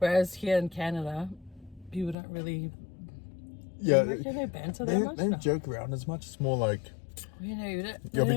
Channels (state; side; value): drops out; right; at 2.1 s